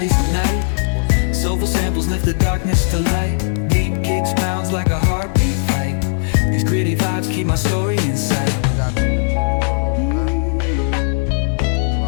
yeysizlar. Ko'rsatmasam bo'lmaydi sizlarga. Bunga обязательно qora non bilan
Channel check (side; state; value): right; silent; digital silence